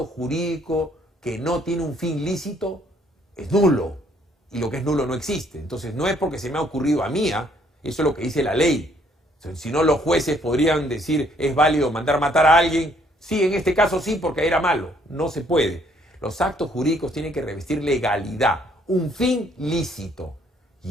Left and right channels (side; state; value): both; normal; correlation 0.65